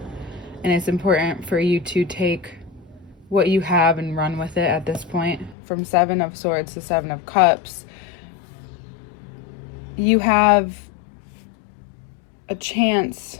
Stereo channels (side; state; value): right; drops out; at 5.6 s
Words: and it's important for you to take what you have and run with it at this point. From Seven of Swords to Seven of Cups, you have a chance